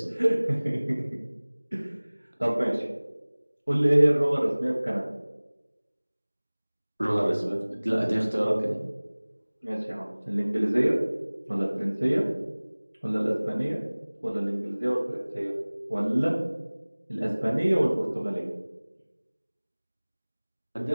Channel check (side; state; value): both; inverted; correlation -1.00